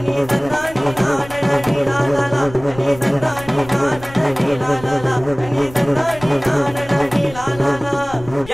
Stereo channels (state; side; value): noise; left; rumble, 17 dB below the sound